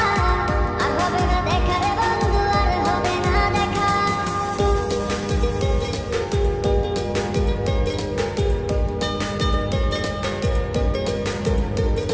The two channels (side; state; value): both; identical; correlation 1.00